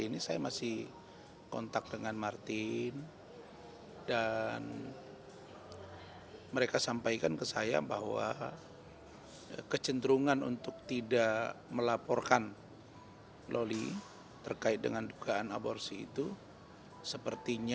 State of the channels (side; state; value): both; identical; correlation 1.00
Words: ini saya masih kontak dengan Martin dan mereka sampaikan ke saya bahwa kecenderungan untuk tidak melaporkan Loli terkait dengan dugaan aborsi itu